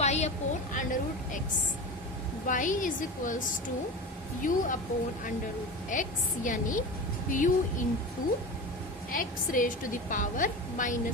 upon under root x, y is equals to u upon under root x, यानी u into x raise to the power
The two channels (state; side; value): normal; both; correlation 0.28